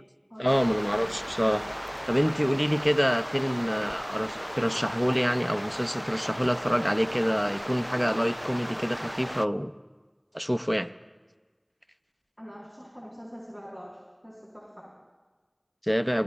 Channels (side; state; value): both; identical; correlation 1.00